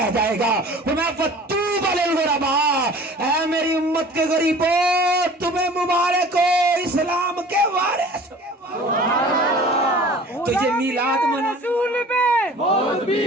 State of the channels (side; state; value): both; normal; correlation 0.44